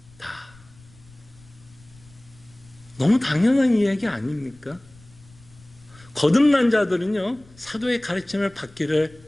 너무 당연한 이야기 아닙니까? 거듭난 자들은요, 사도의 가르침을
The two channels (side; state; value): left; noise; rumble, 25 dB below the sound